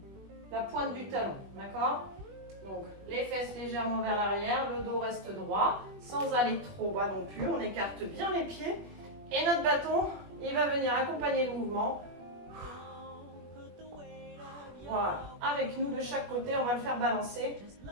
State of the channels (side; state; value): left; late; 21 ms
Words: la pointe du talon. D'accord? Donc les fesses légèrement vers l'arrière, le dos reste droit, sans aller trop bas non plus. On écarte bien les pieds. Et notre bâton, il va venir accompagner le mouvement. Voilà. Avec nous de chaque côté, on va le faire balancer.